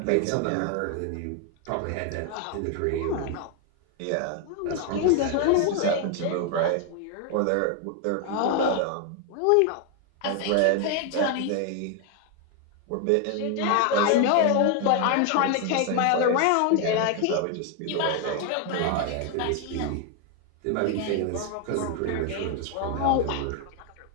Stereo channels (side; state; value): both; different; correlation 0.01